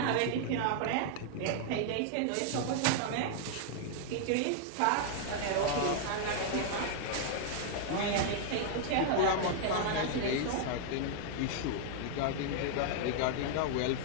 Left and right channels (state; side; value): different; both; correlation -0.01